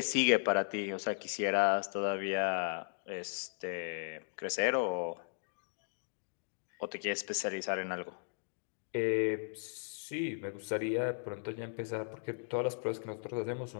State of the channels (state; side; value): silent; right; digital silence